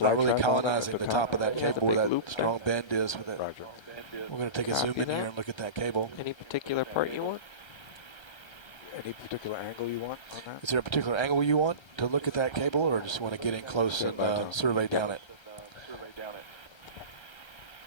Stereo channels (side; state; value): right; late; 1.3 ms